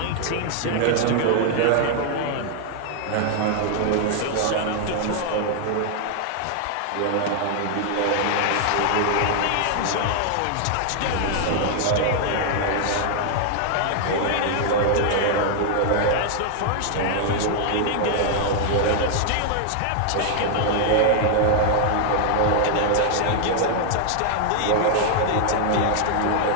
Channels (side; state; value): both; different; correlation 0.00